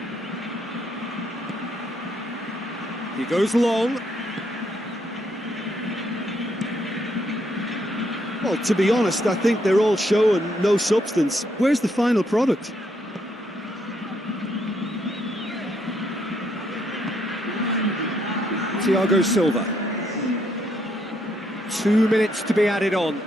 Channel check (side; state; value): both; normal; correlation 0.74